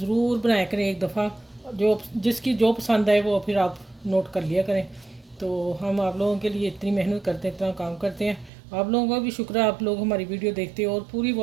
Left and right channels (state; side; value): drops out; left; at 8.5 s